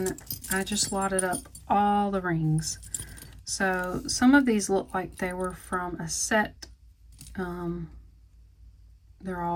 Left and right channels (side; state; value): both; identical; correlation 1.00